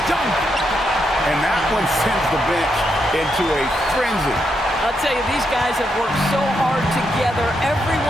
dunk! And that one sends the bench into a frenzy. I'll tell you, these guys have worked so hard together.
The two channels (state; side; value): normal; both; correlation 0.81